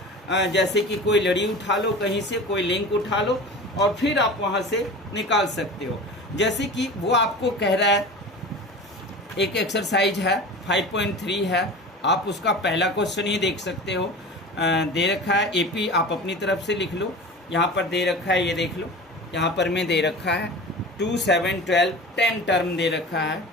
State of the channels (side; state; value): both; normal; correlation 0.35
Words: जैसे कि कोई लड़ी उठा लो, कहीं से कोई लिंक उठा लो और फिर आप वहाँ से निकाल सकते हो। जैसे कि वो आपको कह रहा है, एक एक्सरसाइज है 5.3 है, आप उसका पहला क्वेश्चन ही देख सकते हो। दे रखा है AP, आप अपनी तरफ से लिख लो। यहाँ पर दे रखा है, ये देख लो, यहाँ पर में दे रखा है 2, 7, 12 10 टर्म दे रखा है,